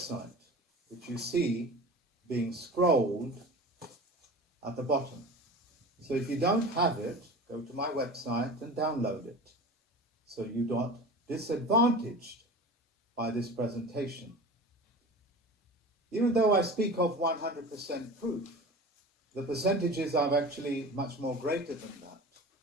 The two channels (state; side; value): normal; both; correlation 0.35